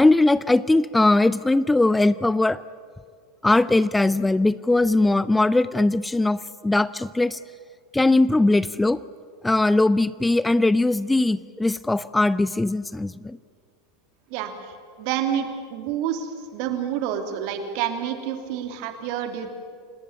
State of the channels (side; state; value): both; normal; correlation 0.92